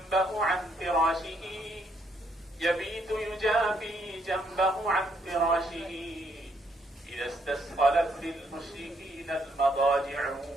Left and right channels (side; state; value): both; normal; correlation 0.72